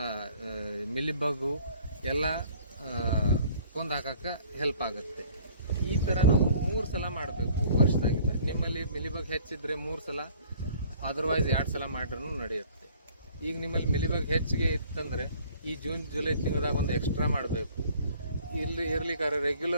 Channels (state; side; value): inverted; both; correlation -0.54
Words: ಮಿಲಿಬಗ್ಗು ಎಲ್ಲ ಕೊಂದು ಹಾಕಕ್ಕೆ ಹೆಲ್ಪ್ ಆಗುತ್ತೆ. ಈ ಥರ ನಾವು 3 ಸಲ ಮಾಡಬೇಕು ವರ್ಷದಾಗಿದ್ದ. ನಿಮ್ಮಲ್ಲಿ ಮಿಲಿಬಗ್ ಹೆಚ್ಚಿದ್ರೆ 3 ಸಲ, ಅದರ್ವೈಸ್ 2 ಸಲ ಮಾಡ್ರೂ ನಡೆಯುತ್ತೆ. ಈಗ ನಿಮ್ಮಲ್ಲಿ ಮಿಲಿಬಗ್ ಹೆಚ್ಚಿಗೆ ಇತ್ತಂದರೆ ಈ ಜೂನ್ ಜುಲೈ ತಿಂಗಳದಾಗ ಒಂದು ಎಕ್ಸ್ಟ್ರಾ ಮಾಡಬೇಕು. ಇರ್ಲಿಕ್ಕಾರೆ